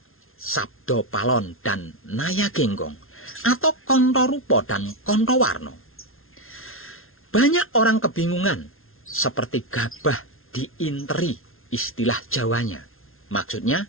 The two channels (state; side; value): late; right; 0.61 ms